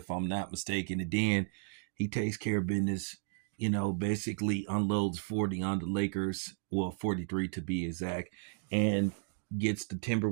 I'm not mistaken. And then he takes care of business. Basically unloads 40 on the Lakers, well, 43 to be exact, and gets the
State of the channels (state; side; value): silent; left; digital silence